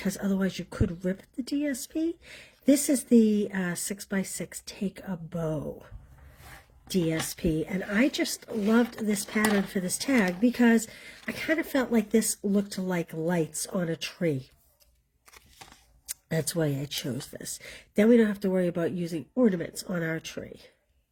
otherwise you could rip the DSP. This is the 6x6 Take a Bow DSP, and I just loved this pattern for this tag because I kind of felt like this looked like lights on a tree. That's why I chose this. Then we don't have to worry about using ornaments on our tree.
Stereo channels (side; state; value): both; identical; correlation 1.00